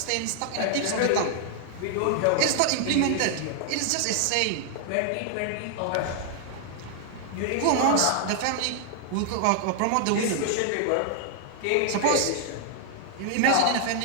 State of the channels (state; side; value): different; both; correlation 0.00